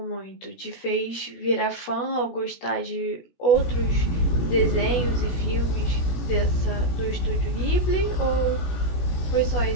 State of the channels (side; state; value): right; late; 16 ms